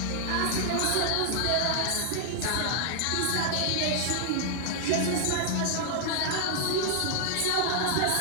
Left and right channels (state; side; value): different; both; correlation -0.01